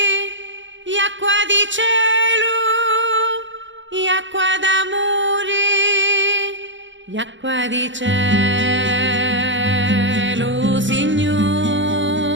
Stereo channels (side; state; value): left; late; 0.54 ms